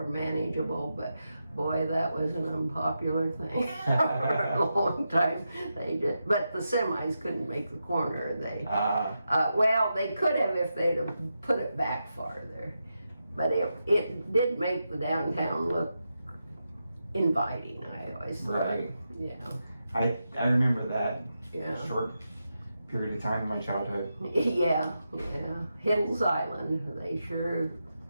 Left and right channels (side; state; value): both; inverted; correlation -0.88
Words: manageable, but boy, that was an unpopular thing for a long time. But the semis couldn't make the corner. Well, they could have if they'd have put it back farther. But it did make the downtown look inviting, I always thought. Right. Yeah. I remember that Yeah. short period of time in my childhood. Yeah. Hills Island, they sure